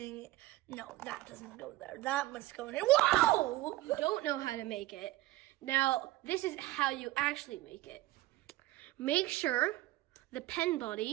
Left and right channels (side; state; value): left; quieter; 17.7 dB